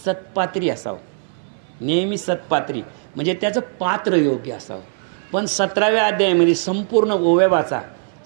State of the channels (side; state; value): left; silent; 61 dB below the other